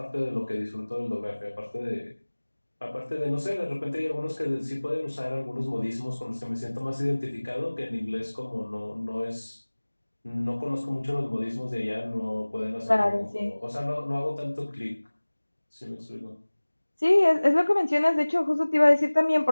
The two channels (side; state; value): both; inverted; correlation -1.00